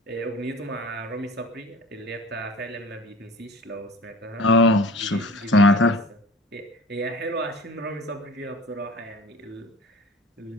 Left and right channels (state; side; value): normal; both; correlation 0.41